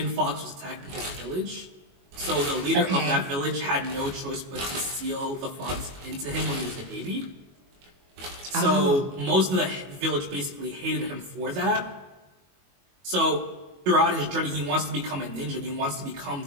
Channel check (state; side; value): late; left; 22 ms